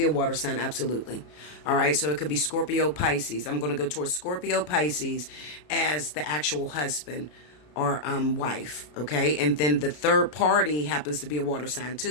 a water sign, absolutely. All right, so it could be Scorpio, Pisces. I'm going to go towards Scorpio, Pisces as the actual husband or wife, okay? And then the third party happens to be a water sign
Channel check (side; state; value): right; late; 33 ms